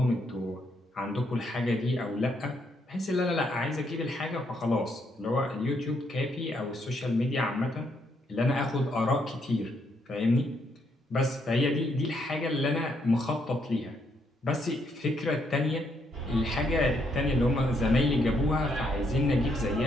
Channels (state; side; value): normal; both; correlation 0.75